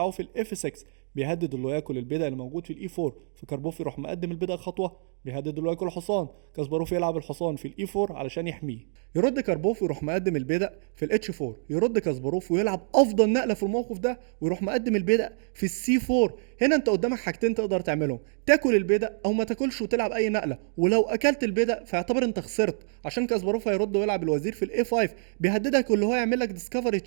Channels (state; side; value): silent; left; digital silence